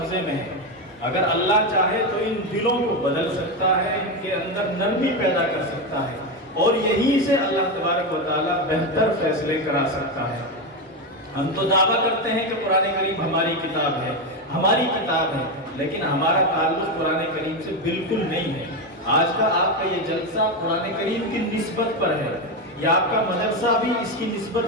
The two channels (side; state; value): both; normal; correlation 0.12